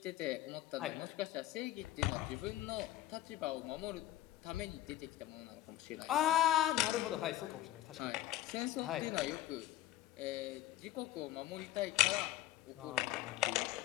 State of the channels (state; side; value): quieter; right; 14.3 dB